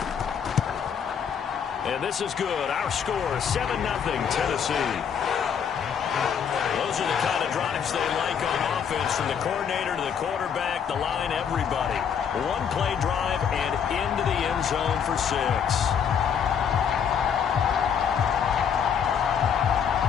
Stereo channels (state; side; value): quieter; right; 7.6 dB